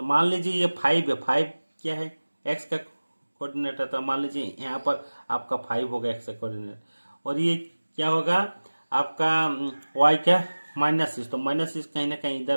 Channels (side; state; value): both; inverted; correlation -1.00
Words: मान लीजिए ये 5 है, 5 क्या है, एक्स का कोऑर्डिनेट है। तो मान लीजिए यहाँ पर आपका 5 होगा एक्स का कोऑर्डिनेट, और ये क्या होगा आपका वाई का -6। तो -6 कहीं ना कहीं